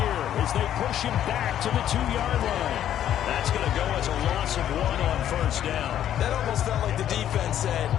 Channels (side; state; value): right; quieter; 10.9 dB